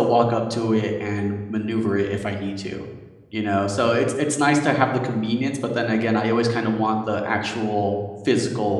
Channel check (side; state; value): both; identical; correlation 1.00